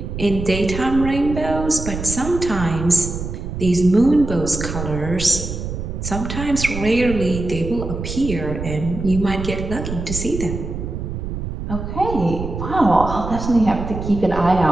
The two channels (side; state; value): right; noise; rumble, 6 dB below the sound